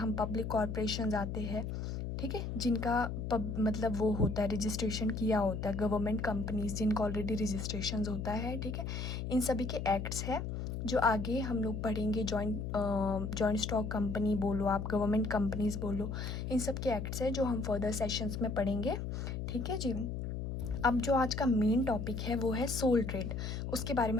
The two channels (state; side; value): noise; left; hum, 4 dB below the sound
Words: पब्लिक कॉरपोरेशंस आते हैं, ठीक है, जिनका मतलब वो होता है, रजिस्ट्रेशन किया होता है, गवर्नमेंट कंपनीज जिनका ऑलरेडी रजिस्ट्रेशन होता है। ठीक है, इन सभी के एक्ट्स है जो आगे हम लोग पढ़ेंगे। जॉइंट स्टॉक कंपनी बोलो आप, गवर्नमेंट कंपनीज बोलो, इन सब के एक्ट्स है जो हम फर्दर सेशंस में पढ़ेंगे। ठीक है जी। अब जो आज का मेन टॉपिक है वो है सोल ट्रेड, उसके बारे